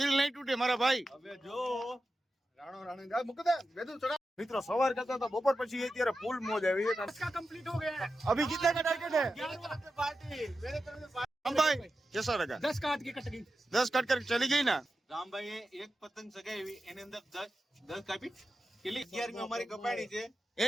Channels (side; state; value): both; normal; correlation 0.91